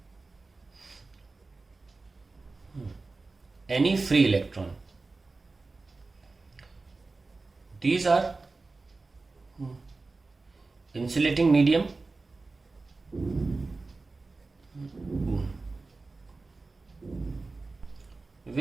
any free electron. These are insulating medium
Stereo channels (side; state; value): left; quieter; 3.6 dB